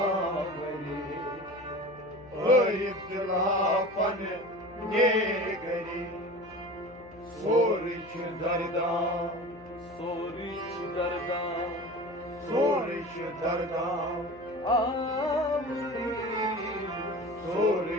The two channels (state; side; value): noise; left; hum, 22 dB below the sound